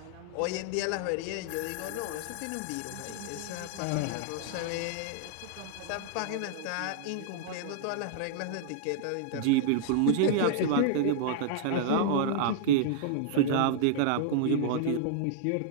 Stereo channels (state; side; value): different; both; correlation -0.01